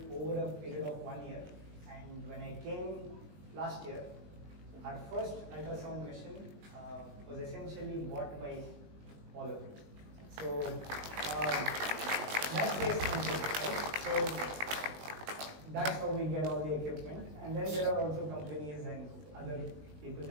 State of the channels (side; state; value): left; late; 20 ms